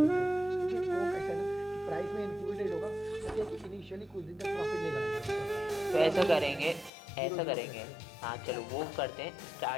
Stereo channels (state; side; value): drops out; right; at 6.9 s